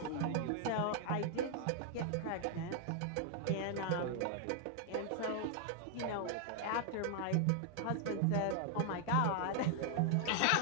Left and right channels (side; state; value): both; different; correlation 0.00